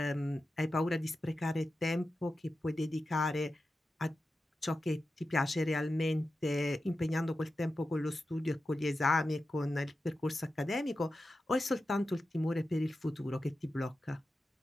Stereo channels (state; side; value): normal; both; correlation 0.92